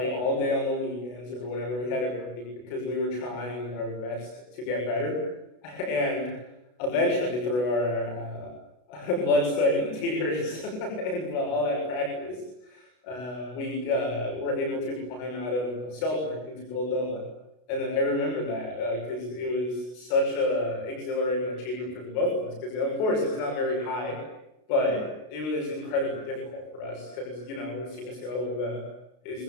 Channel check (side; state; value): right; late; 32 ms